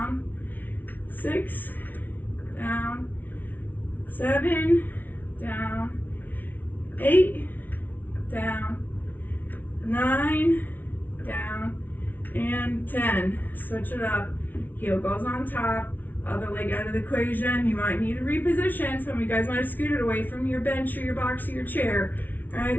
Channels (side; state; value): right; late; 0.085 ms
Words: 6, down. 7, down. 8, down. 9, down. And 10. Switch it up. Heel goes on top. Other leg out of the equation. You might need to reposition. Some of you guys might have scooted away from your bench or your box or your chair. All